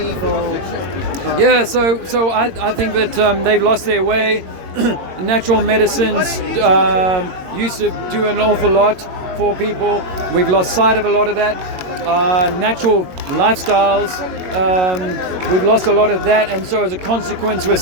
or. So I think that they've lost their way. Natural medicines used to do an awful lot for people. We've lost sight of a lot of that. Natural lifestyles, we've lost a lot of that, and so as a consequence we're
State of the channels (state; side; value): late; left; 22 ms